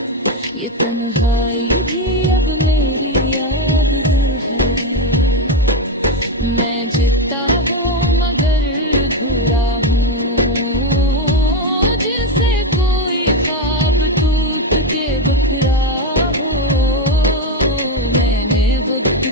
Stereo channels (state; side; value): normal; both; correlation 0.09